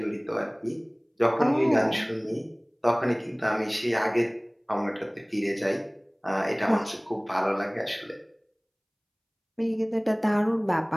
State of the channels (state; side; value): identical; both; correlation 1.00